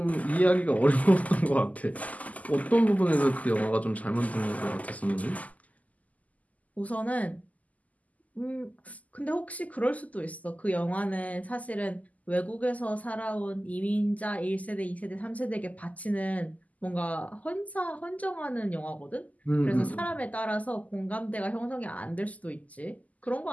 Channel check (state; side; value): late; right; 0.075 ms